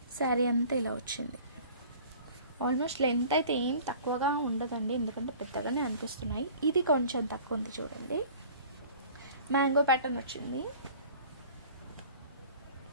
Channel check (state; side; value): inverted; both; correlation -0.46